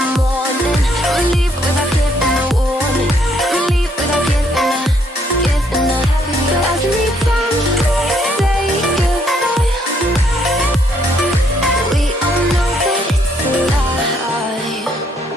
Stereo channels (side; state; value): both; normal; correlation 0.70